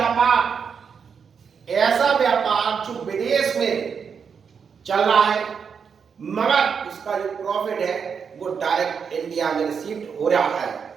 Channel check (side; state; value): left; quieter; 6.4 dB